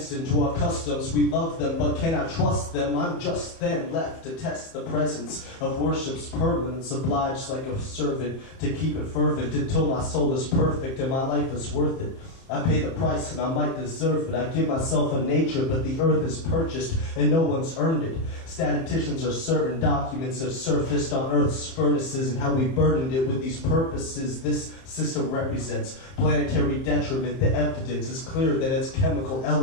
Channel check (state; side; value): late; right; 30 ms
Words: into our customs. We love them, but cannot trust them. I'm just then left to test the presence of worship's permanence, obliged like a servant to keep it fervent until my soul is perfect and my life is worth it. I pay the price and I might deserve it. I give myself a nature, but the earth is purchased and no one's earned it. Statisticians are certain documents have surfaced on earth's furnaces and how we burdened it with these purposes. This system represents planetary detriment. The evidence is clear that it's chemical